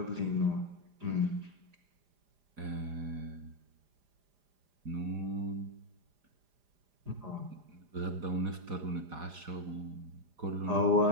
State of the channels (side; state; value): left; late; 4.9 ms